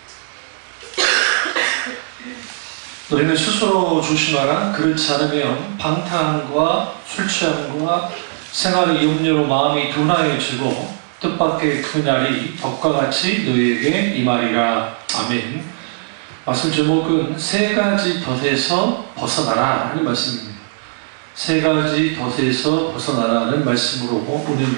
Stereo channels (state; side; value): silent; left; digital silence